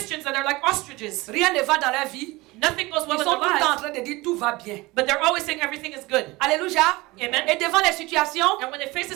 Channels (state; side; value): quieter; left; 21.7 dB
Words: that are like ostriches. Rien ne va dans leur vie. Nothing goes well Ils in sont their tout le temps en lives, train de dire tout va bien. but they're always saying everything is good. Alléluia. Amen. Et devant les situations, And when they face a